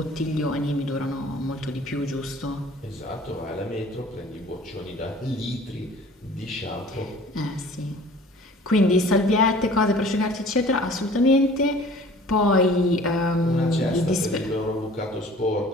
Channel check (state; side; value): normal; both; correlation 0.48